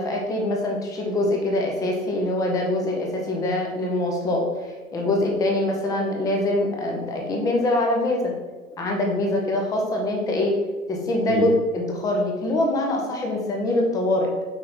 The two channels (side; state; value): both; normal; correlation 0.47